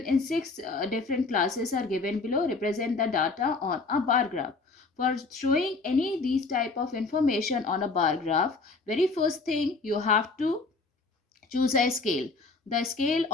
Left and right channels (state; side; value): quieter; right; 3.9 dB